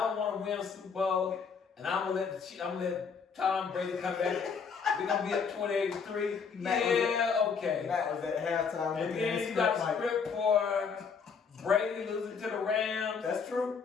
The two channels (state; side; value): quieter; right; 5.9 dB